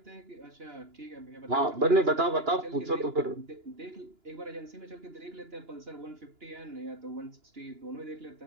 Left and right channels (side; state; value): left; late; 2.9 ms